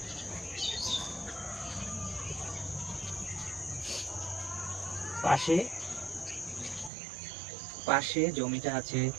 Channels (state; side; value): drops out; left; at 6.9 s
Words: পাশে পাশে জমিটা আছে